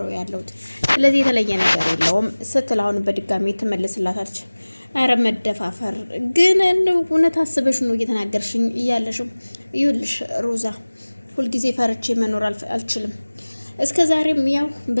ያለሁት። ስለዚህ የተለየ ነገር የለውም ስትል አሁን በድጋሚ ትመልስላታለች። አረ መደፋፈር ግን እውነት አስበሽ ነው እየተናገርሽኝ እያለሽም? ይኸውልሽ ሮዛ ሁልጊዜ ፈርቼ መኖር አልችልም። እስከ ዛሬም ያው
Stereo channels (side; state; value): both; inverted; correlation -1.00